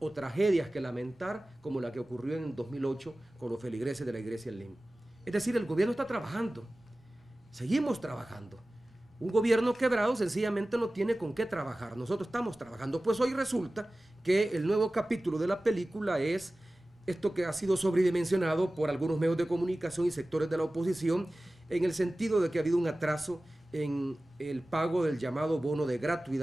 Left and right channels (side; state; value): both; normal; correlation 0.97